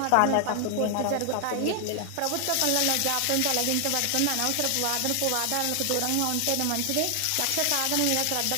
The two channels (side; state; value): both; different; correlation 0.00